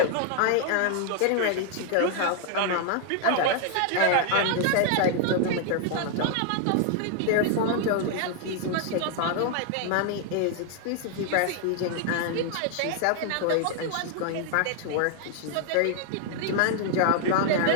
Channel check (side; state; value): both; different; correlation 0.00